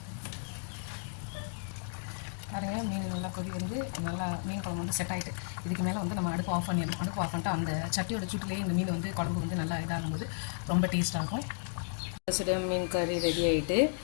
பாருங்க, மீன் நல்லா கொதி வந்து நல்லா மீன் குழம்பு வந்து செட் ஆகிட்டு இதுக்கு மேலே வந்து நம்ம அடுப்பு ஆஃப் பண்ணிடணும். அடுப்பு ஆஃப் பண்ணிட்டு அந்த சட்டியோட சூட்டிலேயே இந்த மீன் வந்து குழம்பு வந்து நல்லா இதாகும்போது ரொம்ப டேஸ்ட்டாகும். மீன் கறி ரெடி ஆகிட்டு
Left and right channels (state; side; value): silent; right; digital silence